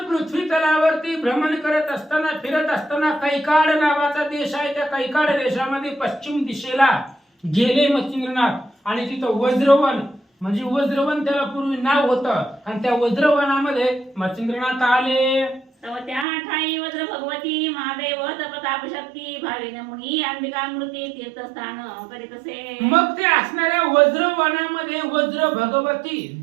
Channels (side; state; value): left; drops out; at 16.2 s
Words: पृथ्वी तलावरती भ्रमण करत असताना फिरत असताना कैकाड नावाचा देश आहे. त्या कैकाड देशामध्ये पश्चिम दिशेला गेले मच्छिंद्रनाथ आणि तिथं वज्रवन म्हणजे वज्रवन त्याला पूर्वी नाव होतं आणि त्या वज्रवनामध्ये मच्छिंद्रनाथ आले. तव त्या ठाई वज्र भगवती महादेव प्रताप शक्ती भावेन मुनी अंबिका मृती तीर्थस्थान करीत असे. मग ते असणाऱ्या वज्रवनामध्ये वज्र भगवती